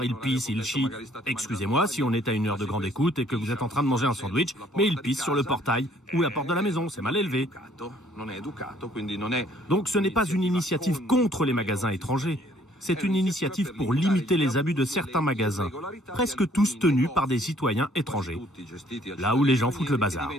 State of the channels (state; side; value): normal; both; correlation 0.62